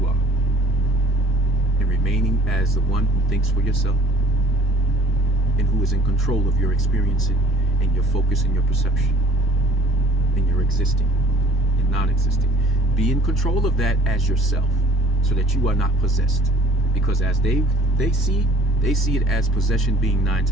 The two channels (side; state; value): both; normal; correlation 0.52